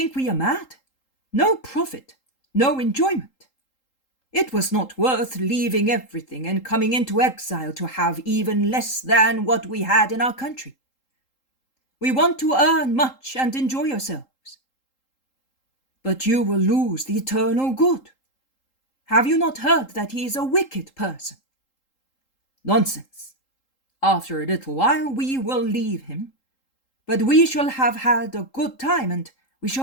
we are mad? No profit, no enjoyment. It was not worth leaving everything and coming into exile to have even less than what we had in our country. We want to earn much and enjoy ourselves. But you will lose the eternal good, Have you not heard that he is a wicked person? Nonsense. After a little while we will leave him, but we shall have had a good time and we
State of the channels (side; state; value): right; late; 3.8 ms